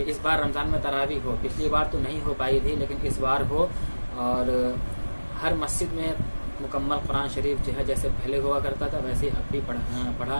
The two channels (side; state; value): both; inverted; correlation -1.00